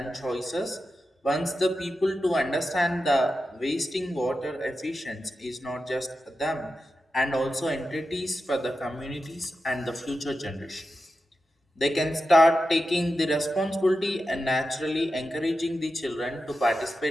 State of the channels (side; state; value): both; normal; correlation 0.91